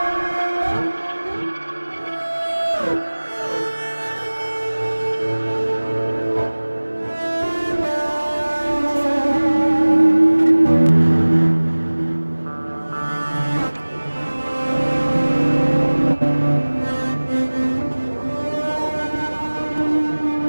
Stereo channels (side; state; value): both; inverted; correlation -1.00